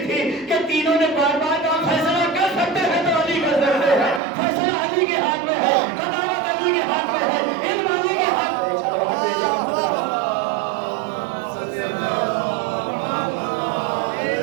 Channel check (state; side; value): drops out; left; at 4.2 s